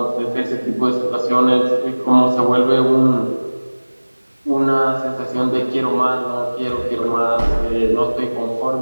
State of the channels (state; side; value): inverted; both; correlation -1.00